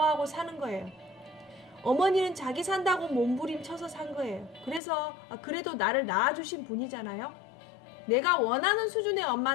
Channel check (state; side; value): drops out; right; at 4.8 s